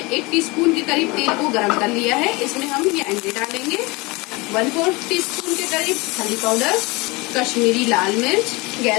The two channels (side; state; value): right; quieter; 24.9 dB